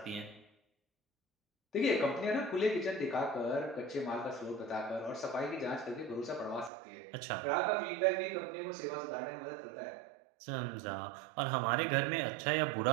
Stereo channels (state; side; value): drops out; left; at 6.7 s